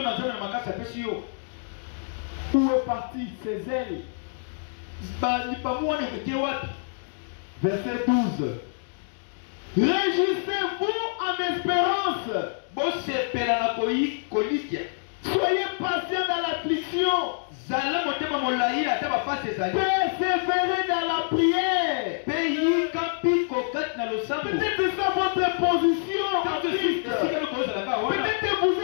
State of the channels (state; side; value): silent; right; digital silence